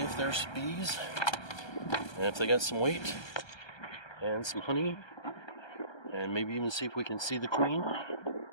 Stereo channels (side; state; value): right; late; 1.3 ms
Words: if there's bees and if they got some weight and some honey, and maybe even see if we can see the queen